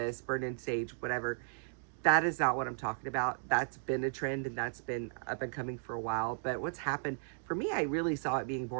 burn in sage, whatever. That is not what I'm talking about. That's been a trend, and that's been up and coming for a while. But what's happened for me, I really saw it being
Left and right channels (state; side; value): silent; left; digital silence